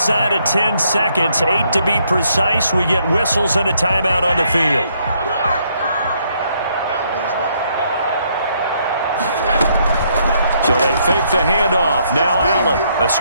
of 10 seconds, 8 to be precise, we get whistles and a timeout on the field. So they fake the handoff. Now Allen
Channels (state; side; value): inverted; both; correlation -0.71